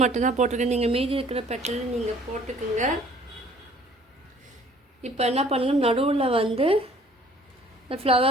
மட்டும்தான் போட்டிருக்கேன். நீங்கள் மீதி இருக்கிற பெட்டல் நீங்கள் போட்டுக்குங்க. இப்போ என்ன பண்ணுங்க, நடுவில் இந்த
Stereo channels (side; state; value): both; normal; correlation 0.55